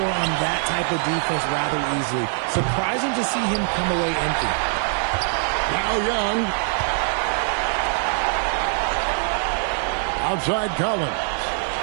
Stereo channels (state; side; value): silent; left; 58 dB below the other